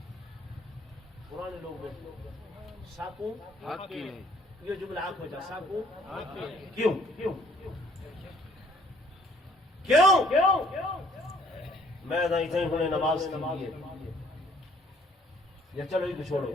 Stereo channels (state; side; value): normal; both; correlation 0.60